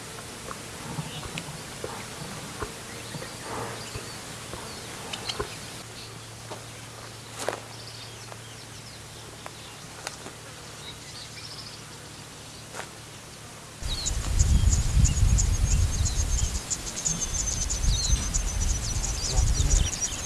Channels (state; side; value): identical; both; correlation 1.00